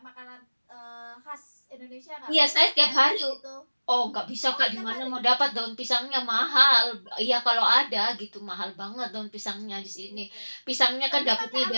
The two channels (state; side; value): inverted; both; correlation -1.00